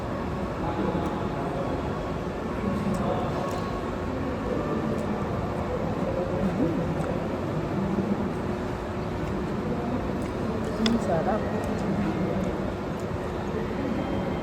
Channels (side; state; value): both; identical; correlation 1.00